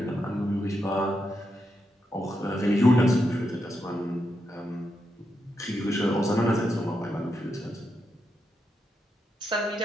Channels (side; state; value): both; normal; correlation 0.84